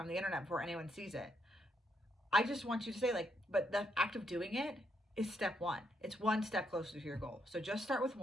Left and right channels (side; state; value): both; normal; correlation 0.77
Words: the internet before anyone sees it. I just want you to say like, but the act of doing it is step 1. It's 1 step closer to your goal. So just start with